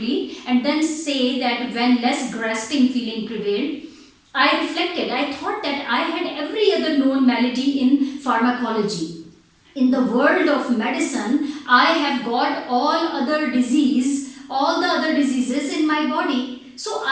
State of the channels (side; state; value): both; identical; correlation 1.00